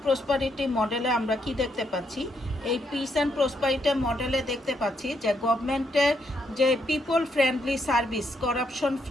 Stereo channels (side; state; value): both; normal; correlation 0.76